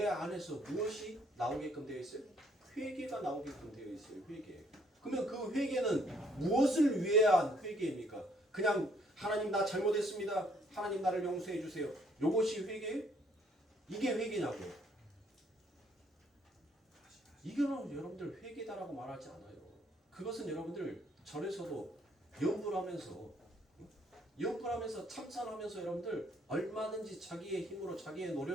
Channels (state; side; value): normal; both; correlation 0.66